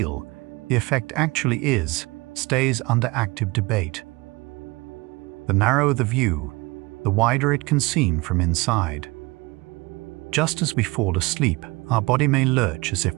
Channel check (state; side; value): quieter; left; 24.1 dB